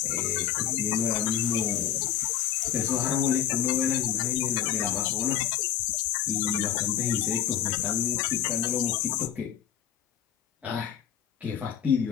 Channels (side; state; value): right; quieter; 10.1 dB